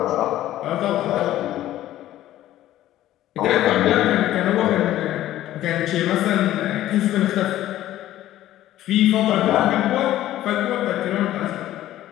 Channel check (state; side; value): quieter; right; 13.8 dB